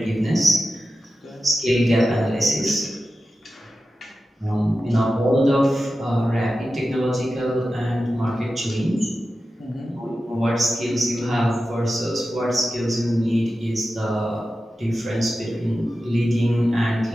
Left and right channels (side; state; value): both; normal; correlation 0.92